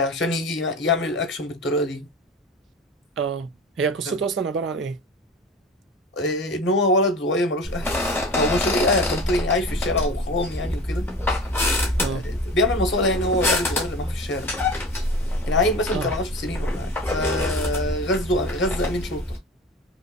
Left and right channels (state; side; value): normal; both; correlation 0.35